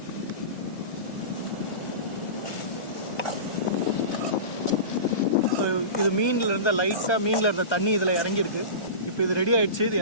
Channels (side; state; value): right; late; 1.2 ms